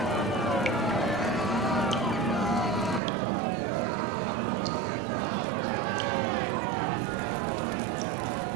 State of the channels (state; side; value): drops out; left; at 3.0 s